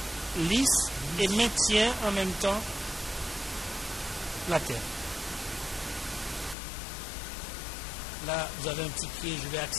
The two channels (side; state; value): right; drops out; at 6.6 s